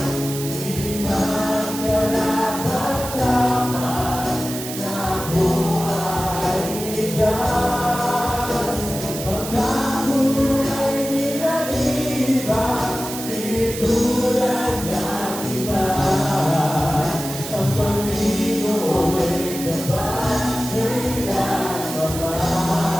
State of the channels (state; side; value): noise; right; hiss, 9 dB below the sound